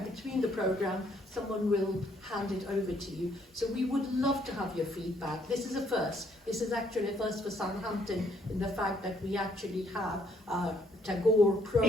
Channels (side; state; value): both; normal; correlation 0.68